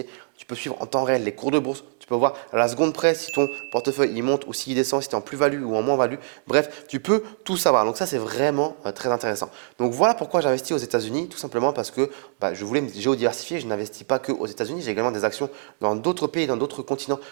Tu peux suivre en temps réel les cours de bourse. Tu peux voir à la seconde près si ton portefeuille il monte ou s'il descend, si tu es en plus-value ou en moins-value. Bref, tu peux tout savoir. Donc ça, c'est vraiment très intéressant. Donc voilà pourquoi j'investis aux États-Unis. Tout simplement parce que je voulais me géodiversifier. Je n'investis pas que aux États-Unis. J'ai également des actions dans d'autres pays, dans d'autres continents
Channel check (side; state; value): left; silent; digital silence